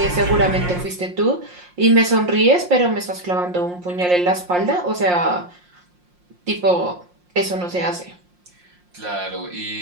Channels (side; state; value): left; late; 5.6 ms